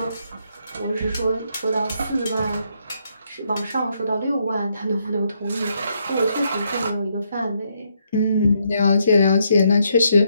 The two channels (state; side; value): inverted; both; correlation -0.76